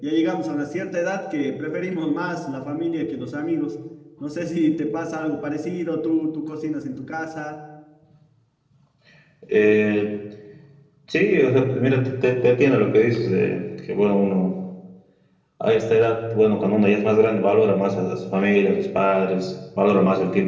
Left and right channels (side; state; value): both; identical; correlation 1.00